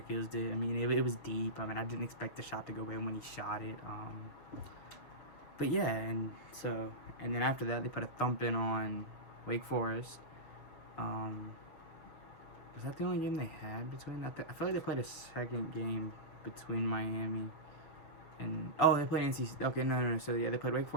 Keels did. I mean, it was deep. I mean, I didn't expect the shot to go in when he shot it. But yeah, and then after that, they put a thumping on Wake Forest. Was that the only game they had between that? I feel like they played a second game between Miami and they played NC. Okay, no. So yeah, they played Wake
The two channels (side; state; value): right; late; 7.1 ms